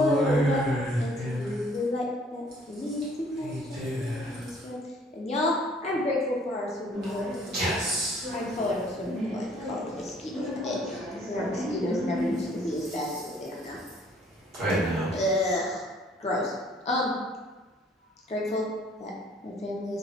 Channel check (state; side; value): normal; both; correlation 0.59